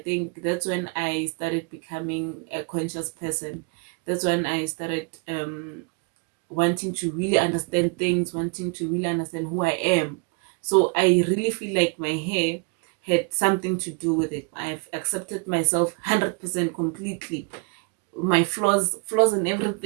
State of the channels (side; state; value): left; quieter; 33.7 dB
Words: think that's when I started becoming a conscious person. That's when I started wanting to really understand things, wanting to really understand who I am. So I really feel like my hair had something to do with it. I've accepted myself 100% completely. My flaws and